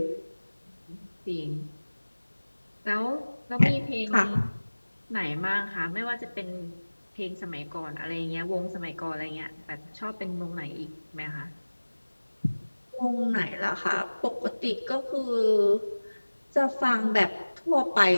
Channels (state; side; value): inverted; both; correlation -1.00